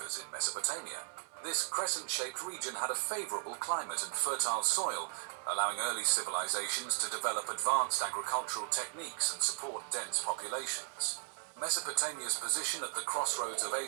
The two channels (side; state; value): left; silent; digital silence